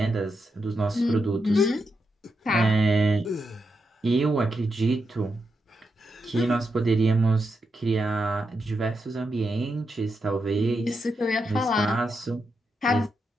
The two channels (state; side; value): normal; both; correlation 0.85